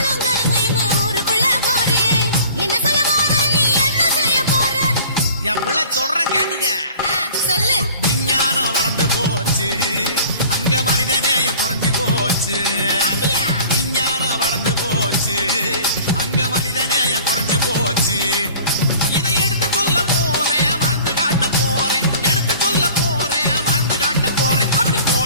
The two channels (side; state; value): both; inverted; correlation -0.46